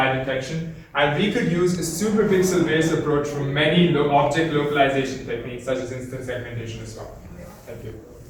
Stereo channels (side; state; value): both; identical; correlation 1.00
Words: detection, and we could use a superpixel-based approach for many object localization techniques, such as instance segmentation as well. Thank you.